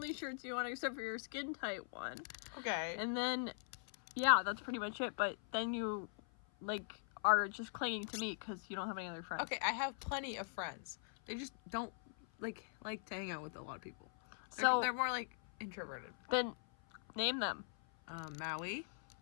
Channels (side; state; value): right; silent; 50 dB below the other